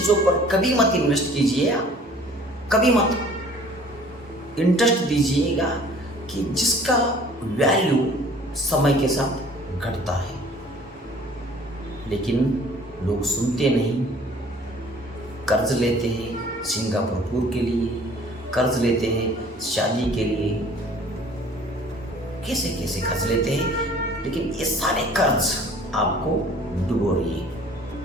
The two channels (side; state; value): both; normal; correlation 0.51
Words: पर कभी मत इन्वेस्ट कीजिए, कभी मत। इंटरेस्ट दीजिएगा कि जिसका वैल्यू समय के साथ घटता है। लेकिन लोग सुनते नहीं, कर्ज लेते हैं सिंगापुर टूर के लिए, कर्ज लेते हैं शादी के लिए, कैसे कैसे कर्ज लेते हैं, लेकिन ये सारे कर्ज आपको डुबो रही है।